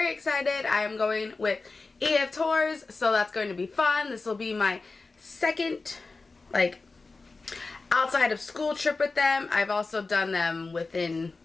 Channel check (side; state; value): right; quieter; 3.8 dB